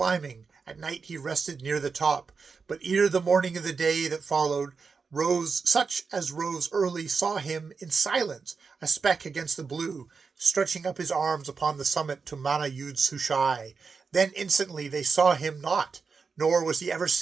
At night he rested near the top. But ere the morning of the day that followed, such as rose early saw him in silence, a speck against the blue, stretching up his arms upon the summit to Mana-Yud-Sushai. Then instantly they saw him not, nor was he ever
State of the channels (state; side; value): quieter; left; 5.1 dB